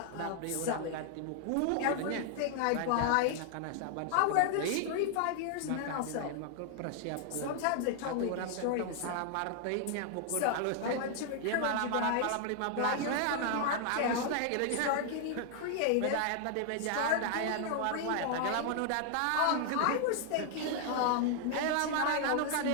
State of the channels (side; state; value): both; different; correlation 0.00